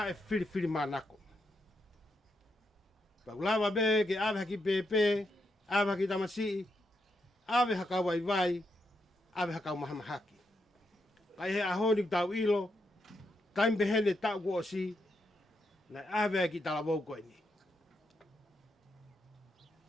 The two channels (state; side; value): normal; both; correlation 0.82